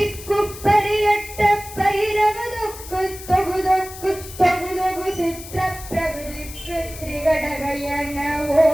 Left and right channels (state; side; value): noise; left; hiss, 14 dB below the sound